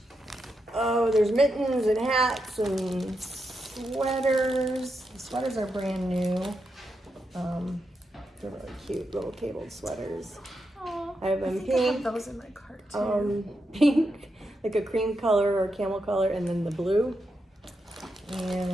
Oh, there's mittens and hats and sweaters. The sweaters are brand new. They're really cute little cabled sweaters. Oh, I have I them think I have pink, those in my cart too. pink, like a cream color or camel color, and then the blue.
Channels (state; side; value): normal; both; correlation 0.85